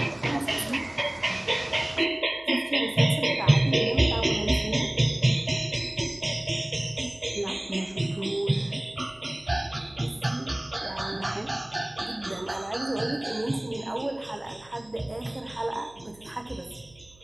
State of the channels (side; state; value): right; noise; hum, 27 dB below the sound